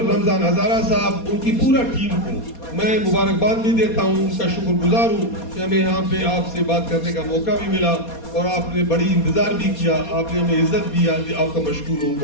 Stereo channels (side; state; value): right; late; 4.2 ms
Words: رمضان ہزارہ صاحب, ان کی پورا ٹیم کو میں مبارکباد بھی دیتا ہوں, ان کا شکر گزار ہوں کہ ہمیں یہاں پہ آپ سے بات کرنے کا موقع بھی ملا اور آپ نے بڑی انتظار بھی کیا, آپ نے ہمیں عزت بھی. آپ کا مشکور ہوں,